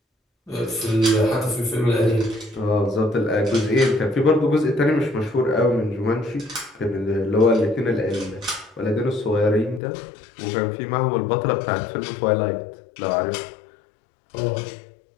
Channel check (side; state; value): right; drops out; at 9.8 s